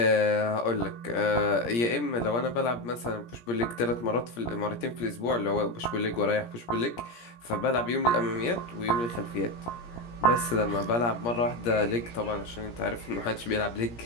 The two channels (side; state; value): right; late; 17 ms